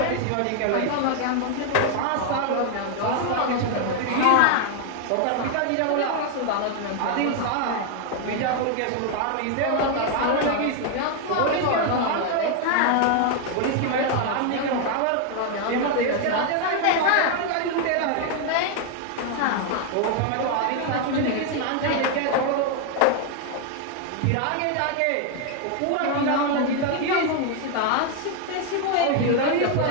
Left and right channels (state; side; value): different; both; correlation 0.00